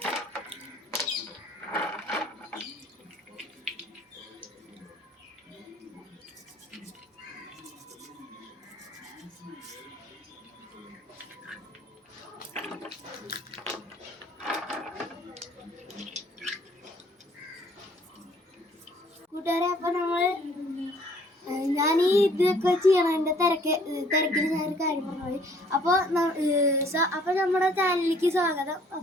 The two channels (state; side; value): normal; both; correlation 0.59